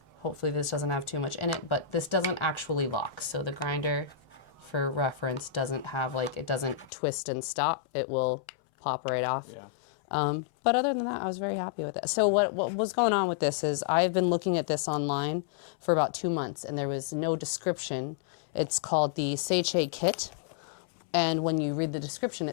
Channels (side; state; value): right; drops out; at 6.9 s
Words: hopefully this doesn't have too much in it, but this doesn't actually lock. So the grinder, for reference, doesn't have it doesn't twist and stop. It will pop right off. Yeah. But other than that, I was very happy with it. So what was going on with this is I've been looking at this online for about 2 months, and there was no description. It's called the Seiche kit, and when you read the description,